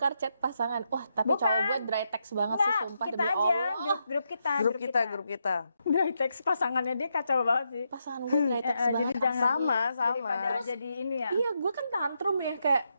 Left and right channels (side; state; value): both; inverted; correlation -0.82